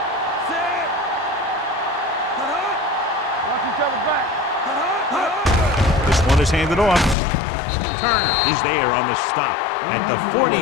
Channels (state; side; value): drops out; right; at 7.2 s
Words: Set. Watch each other back. This one is handed off. Turner is there on the stop at the